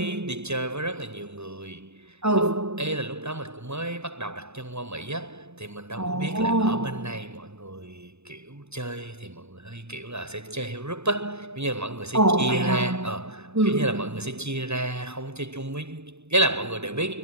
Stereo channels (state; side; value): late; left; 0.80 ms